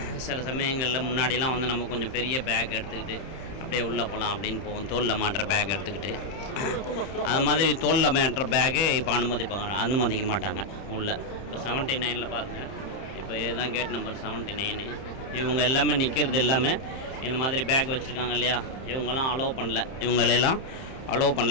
சில சமயங்களில் முன்னாடிலாம் வந்து நம்ம கொஞ்சம் பெரிய பேக் எடுத்துக்கிட்டு அப்படியே உள்ளே போகலாம் அப்படின்னு போவோம். தோளில் மாட்டுற பேக் எடுத்துக்கிட்டு அது மாதிரி தோளில் மாட்டுற பேக்கு இப்போ அனுமதிக்க மாட்டாங்க உள்ளே. இப்போ 79 பாருங்கள், இப்போ இதுதான் கேட் நம்பர் 79. இவங்க எல்லாமே நிற்கிறது எல்லாமே இந்த மாதிரி பேக் வச்சுருக்காங்க இல்லையா, இவங்கெல்லாம் அலோவ் பண்ணல. இவங்களெல்லாம் அலோவ்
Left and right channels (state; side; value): late; right; 31 ms